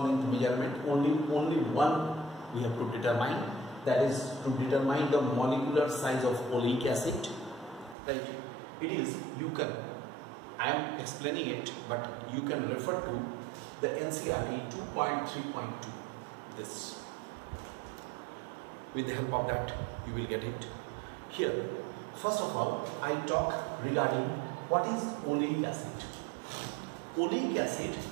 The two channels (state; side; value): drops out; left; at 8.0 s